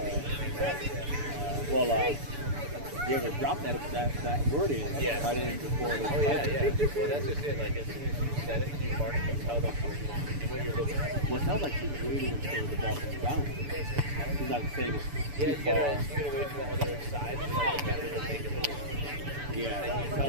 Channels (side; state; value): left; late; 6.9 ms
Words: You ever drop that word in right in before the Well, that's just it. Like, as soon as you said it, you mark it, tell them what you're looking at. Well, it sounds like she's waiting until the ball comes down. She's not saying it's Yeah, too you far. gotta wait for the other side to like defender to make a move. Yeah. And you